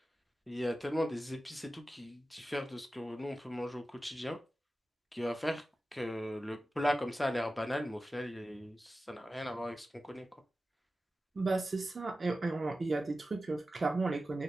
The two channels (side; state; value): both; normal; correlation 0.94